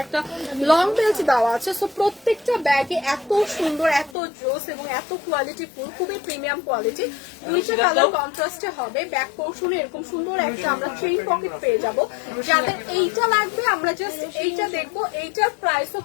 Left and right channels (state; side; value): drops out; right; at 4.2 s